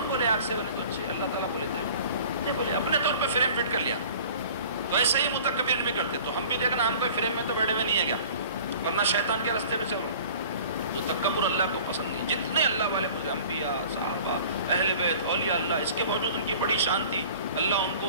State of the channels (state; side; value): inverted; both; correlation -0.46